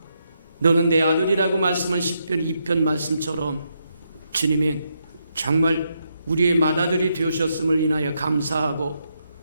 너는 내 아들이라고 말씀한 시편 2편 말씀처럼 주님이 정말 우리의 맏아들이 되셨음을 인하여 감사하고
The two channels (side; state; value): both; inverted; correlation -0.80